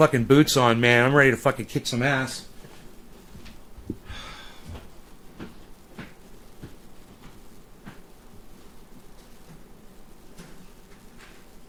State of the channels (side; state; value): both; identical; correlation 1.00